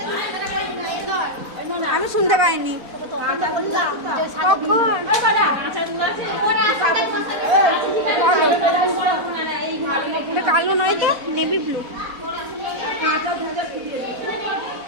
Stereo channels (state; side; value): late; left; 4.1 ms